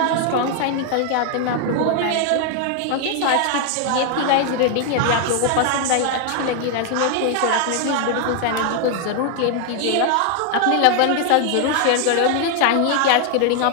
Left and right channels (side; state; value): both; different; correlation 0.00